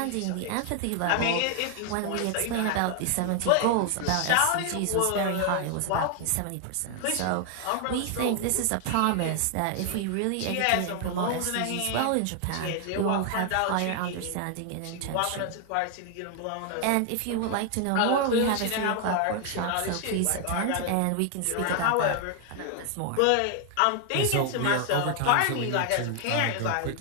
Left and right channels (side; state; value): both; different; correlation 0.00